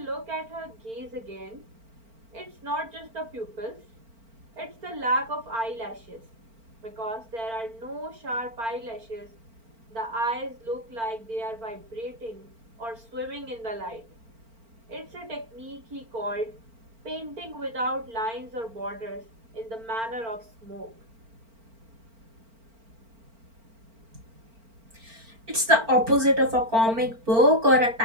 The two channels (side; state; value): left; late; 4.4 ms